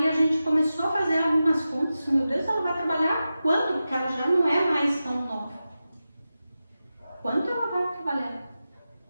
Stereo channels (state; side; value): inverted; both; correlation -0.93